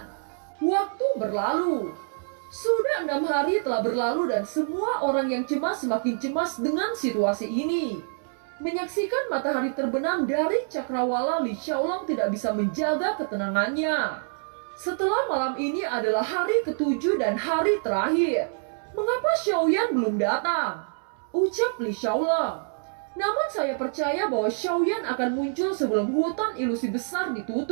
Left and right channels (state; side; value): silent; left; 61 dB below the other